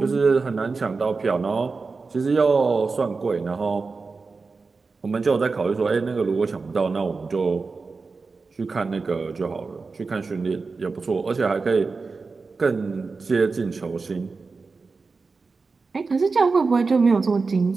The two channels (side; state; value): left; quieter; 4.3 dB